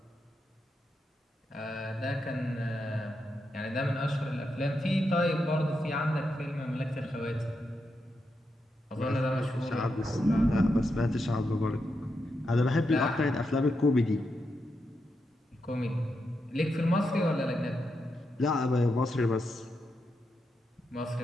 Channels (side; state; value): both; normal; correlation 0.85